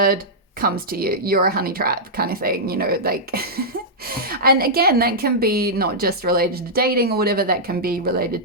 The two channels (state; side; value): normal; both; correlation -0.10